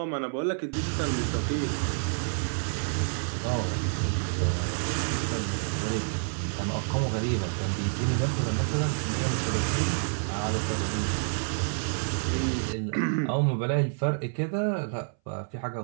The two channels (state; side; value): silent; left; 59 dB below the other